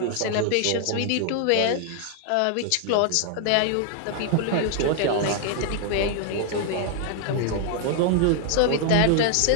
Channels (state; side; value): different; both; correlation 0.00